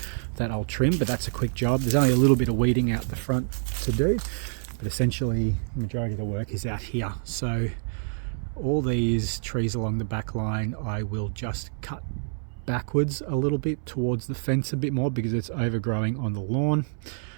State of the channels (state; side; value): silent; left; 60 dB below the other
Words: that I'll trim, but that's a quick job. There's only a little bit of weeding out the front to do, but essentially the majority of the work is out here. So all these trees along the back line I will just cut backwards a little bit towards the fence a bit more because it's overgrowing on the lawn.